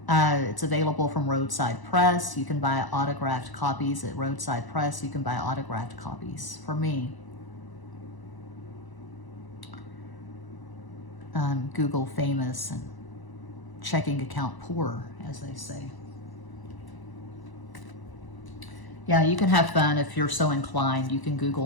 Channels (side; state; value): right; late; 1.0 ms